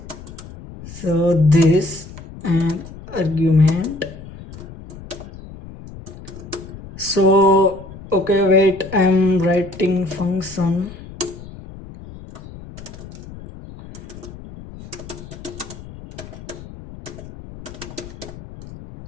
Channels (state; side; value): noise; left; rumble, 15 dB below the sound